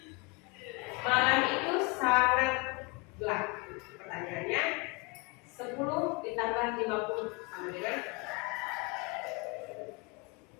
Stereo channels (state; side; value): quieter; right; 28.5 dB